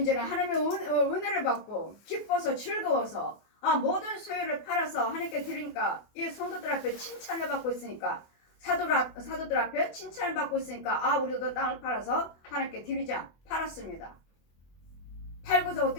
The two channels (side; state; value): right; late; 24 ms